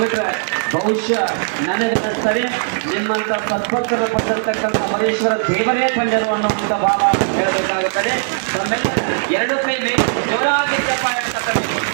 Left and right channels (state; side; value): silent; left; 66 dB below the other